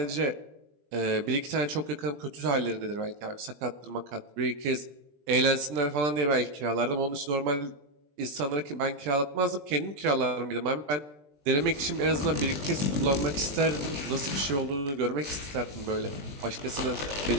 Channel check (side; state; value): left; late; 20 ms